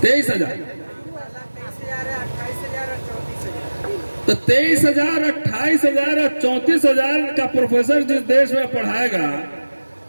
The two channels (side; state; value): both; inverted; correlation -1.00